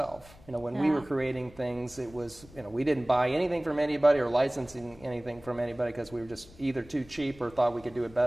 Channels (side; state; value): left; noise; rumble, 22 dB below the sound